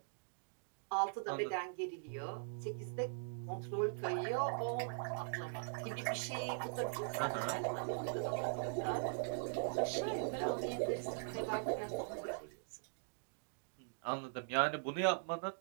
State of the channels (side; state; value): left; silent; digital silence